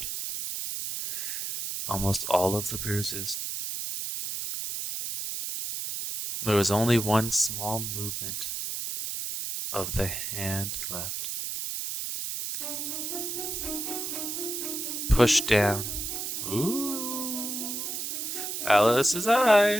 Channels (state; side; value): noise; right; hiss, 4 dB below the sound